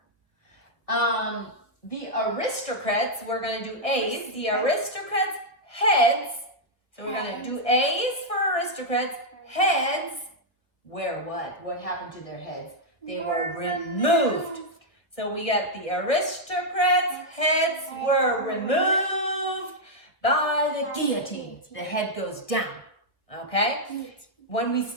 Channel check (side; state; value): right; late; 1.4 ms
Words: The aristocrats, we're going to do A's. The aristocrats' heads. So we're going to do A's for aristocrats. Heads. Where what? What happened to their heads? They were removed. So we got the aristocrats' heads were removed by the guillotine. The head goes down. Okay? When we